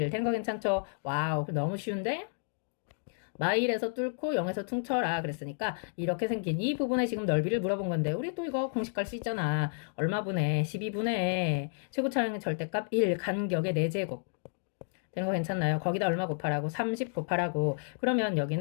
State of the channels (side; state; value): right; silent; digital silence